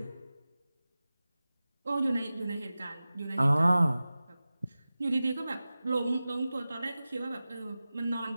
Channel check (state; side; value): inverted; both; correlation -0.96